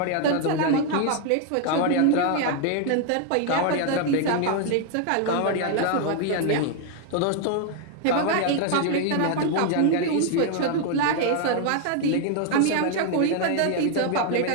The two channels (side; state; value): both; different; correlation 0.00